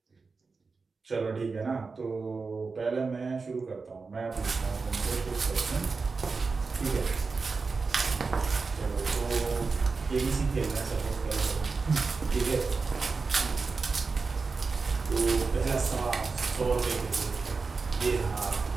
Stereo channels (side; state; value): left; quieter; 4.4 dB